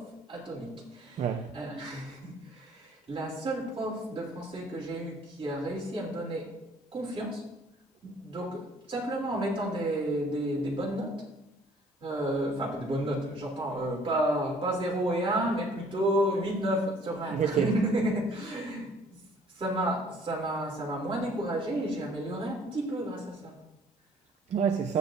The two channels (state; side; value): normal; both; correlation 0.57